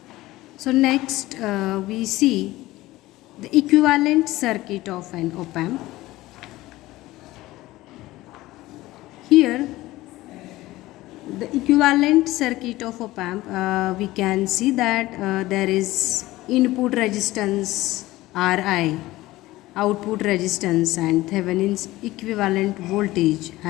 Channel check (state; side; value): quieter; right; 17.7 dB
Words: so next we see the equivalent circuit of an op-amp. Here the equivalent circuit of op-amp, we can see that there is input resistance Ri, output resistance, and Thevenin's equivalent voltage